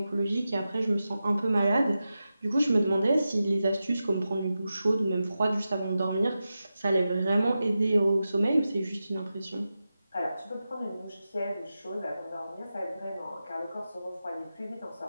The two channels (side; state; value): both; inverted; correlation -0.92